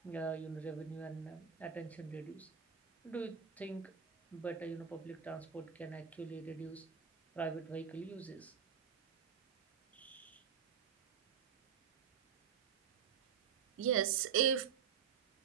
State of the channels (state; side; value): quieter; left; 7.3 dB